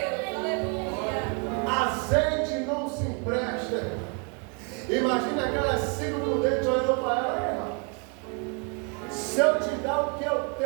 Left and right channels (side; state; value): left; quieter; 37.3 dB